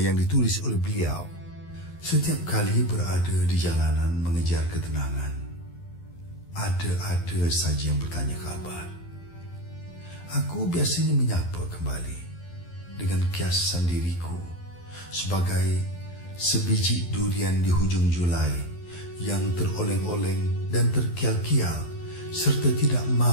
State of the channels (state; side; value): late; right; 12 ms